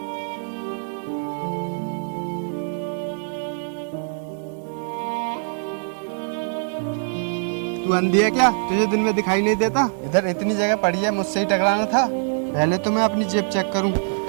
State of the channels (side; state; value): left; silent; digital silence